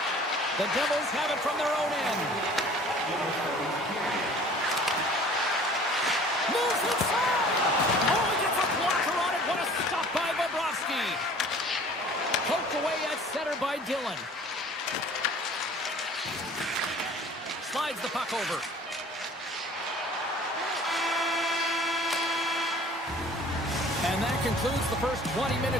The Devils have it from their own end. Moves inside. Oh, he gets a blocker on it. What a stop by Bobrovsky. Poked away at center by Dillon. Slides the puck over. And that concludes the first 20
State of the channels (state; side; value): normal; both; correlation 0.49